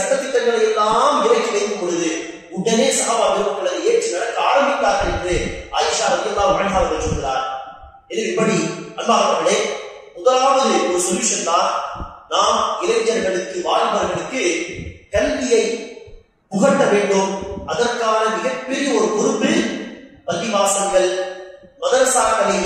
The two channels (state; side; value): identical; both; correlation 1.00